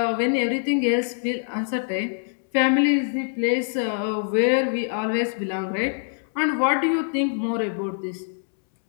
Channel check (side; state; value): right; silent; digital silence